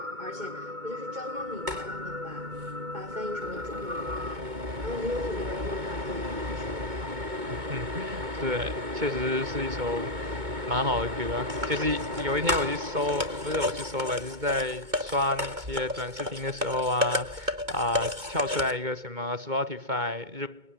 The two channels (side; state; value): left; late; 2.2 ms